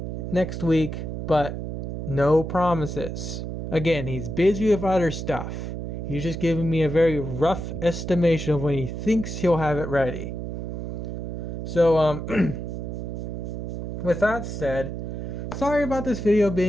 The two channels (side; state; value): right; noise; hum, 5 dB below the sound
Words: next week, but no promises. Again, he's busy with other stuff. He's just giving me a very rough estimation of when he thinks he'll have it ready. So, with that said, sorry about this video